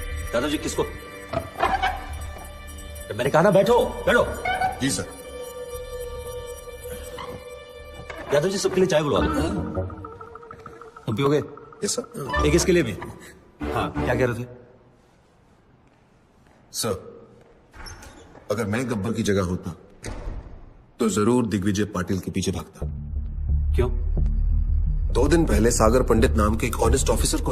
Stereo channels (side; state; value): both; identical; correlation 1.00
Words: दादाजी। किसको? मैंने कहा ना बैठो बैठो। जी सर। यादव जी सबके लिए चाय बुलवा दो। तुम पियोगे? Yes sir. एक इसके लिए भी। हाँ क्या कह रहे थे? सर, अगर मैं गब्बर की जगह होता तो जरूर दिग्विजय पाटिल के पीछे भागता। क्यों? 2 दिन पहले सागर पंडित नाम के एक ऑनेस्ट ऑफिसर को